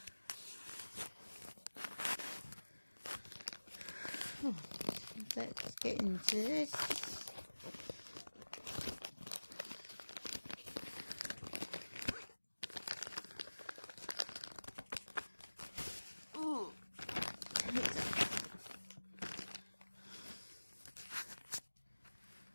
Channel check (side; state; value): both; inverted; correlation -1.00